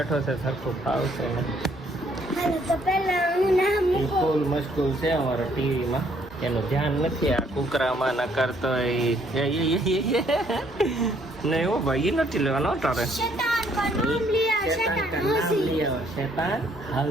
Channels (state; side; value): noise; left; hum, 26 dB below the sound